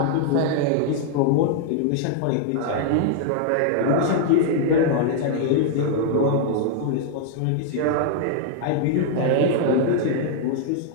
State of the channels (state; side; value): different; both; correlation 0.00